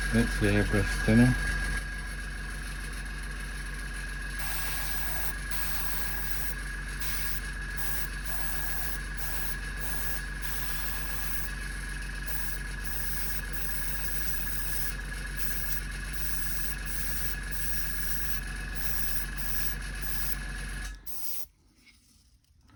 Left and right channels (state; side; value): identical; both; correlation 1.00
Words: That's the airbrush thinner.